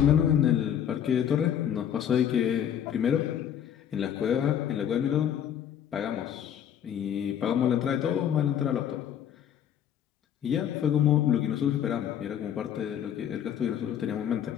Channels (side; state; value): right; quieter; 9.5 dB